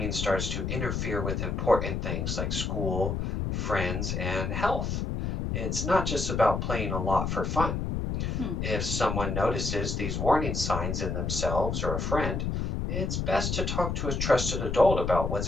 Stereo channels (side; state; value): left; noise; rumble, 1 dB below the sound